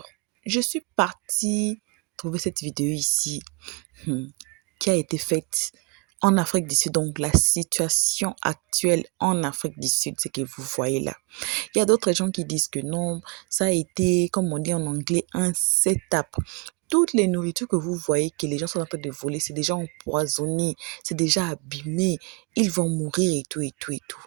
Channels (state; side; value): quieter; left; 30.8 dB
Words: je suis partie trouver cette vidéo ici hmm, qui a été faite en Afrique du Sud, donc la situation actuelle en Afrique du Sud, ce que vous voyez là. Il y a d'autres gens qui disent que non, ça a été, comme on dit en anglais, un setup. Toutes les nourritures que vous voyez que les gens sont en train de voler, c'est déjà empoisonné, c'est déjà abîmé, ils vont mourir et tout, et tout, et tout.